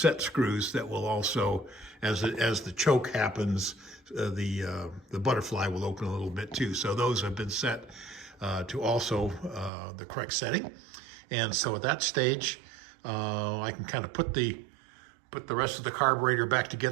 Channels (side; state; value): left; drops out; at 9.7 s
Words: screws that will also, as the choke happens, the butterfly will open a little bit too. So those have been set to also the correct setting. And so at that stage, I can kind of put the rest of the carburetor back